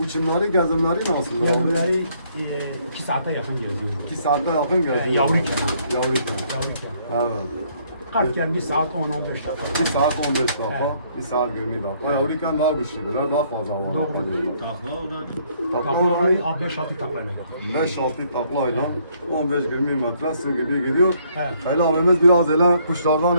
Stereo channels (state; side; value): inverted; both; correlation -0.67